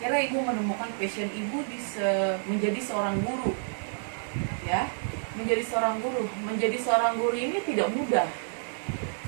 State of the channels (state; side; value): silent; left; digital silence